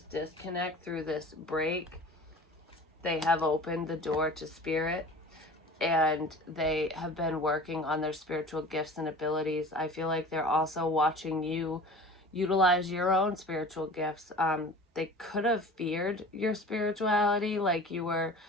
disconnect, through this break, they have opened the door to spirit, and they have been working on their spiritual gifts and abilities. I feel like they're also watching you utilize your own spiritual gifts. they could have feared your spirituality. Like you were,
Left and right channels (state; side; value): normal; both; correlation 0.40